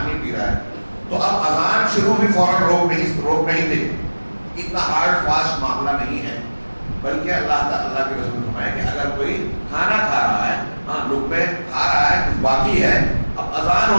پی رہا ہے، تو اب اذان شروع بھی فوراً روک نہیں دے۔ اتنا ہارڈ فاسٹ معاملہ نہیں ہے، بلکہ اللہ کے رسول نے فرمایا کہ اگر کوئی کھانا کھا رہا ہے، ہاں لقمے کھا رہا ہے، کچھ باقی ہے، اب اذان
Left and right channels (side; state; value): both; inverted; correlation -1.00